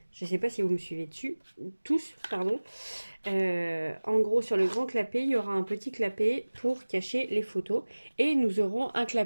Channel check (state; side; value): inverted; both; correlation -1.00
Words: Je ne sais pas si vous me suivez dessus, tous, pardon. En gros, sur le grand clapet, il y aura un petit clapet pour cacher les photos. Et nous aurons un